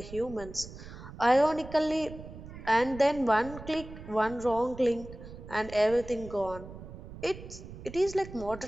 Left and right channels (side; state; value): right; noise; rumble, 14 dB below the sound